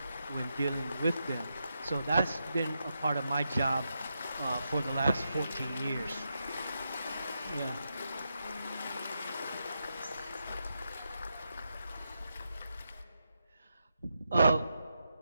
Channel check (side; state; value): both; inverted; correlation -0.85